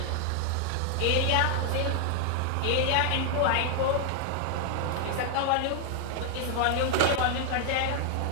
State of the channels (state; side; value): different; both; correlation 0.00